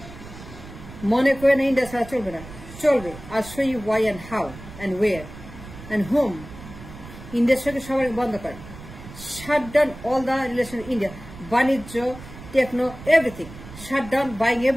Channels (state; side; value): noise; right; rumble, 15 dB below the sound